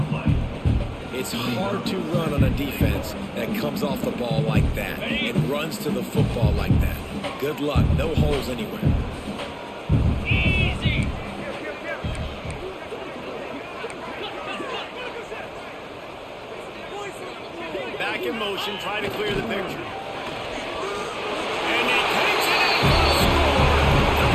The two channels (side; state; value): both; identical; correlation 1.00